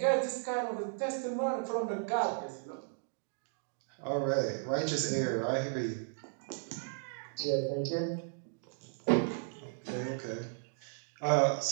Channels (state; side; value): silent; left; digital silence